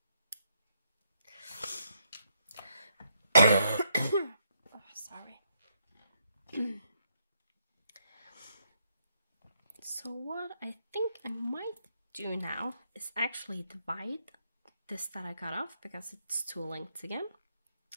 Oh, sorry. So what I think I might do now is actually divide this that I got off because it's 2 lengths again.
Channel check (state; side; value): inverted; both; correlation -0.76